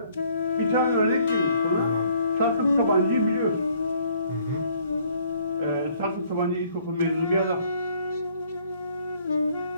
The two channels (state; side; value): inverted; both; correlation -0.62